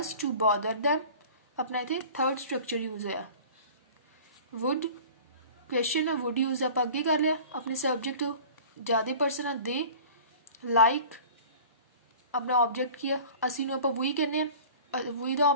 to bother them अपना इतने थर्ड स्ट्रक्चर यूज है। वुड क्वेश्चन है वुड यूज आप अगे कर लिया अपने सब्जेक्ट ज़्यादा पर्सन है दे लाइक अपना ऑब्जेक्ट की असी आप वही कहने वही का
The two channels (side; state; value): both; inverted; correlation -0.42